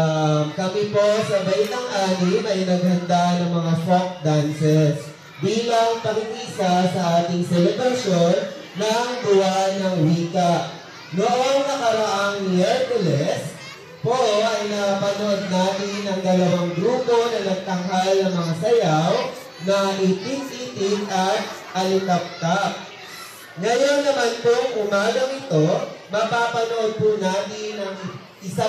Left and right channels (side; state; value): both; identical; correlation 1.00